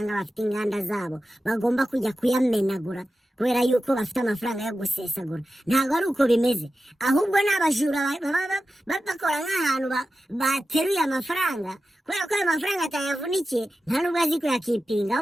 bafite inganda zabo bagomba kujya kuyamenagura kubera yuko bafite amafaranga yo gusesagura. Ntabwo ari uko bimeze, ahubwo n'abajura bakora nk'ahantu bateruye amafaranga kubera ko ayo mafaranga atayavunikiye, nta nubwo azi kuyakipinga,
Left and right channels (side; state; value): both; normal; correlation 0.93